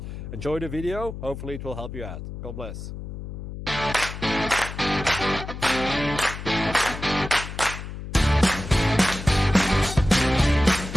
Enjoy the video, hopefully it will help you out. God bless.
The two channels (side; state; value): left; noise; hum, 9 dB below the sound